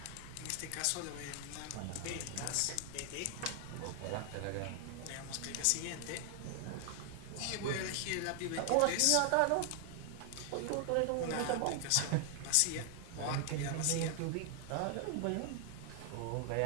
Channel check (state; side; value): different; both; correlation 0.00